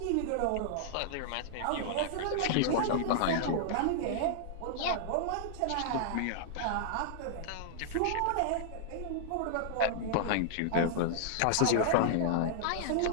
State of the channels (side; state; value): both; different; correlation -0.01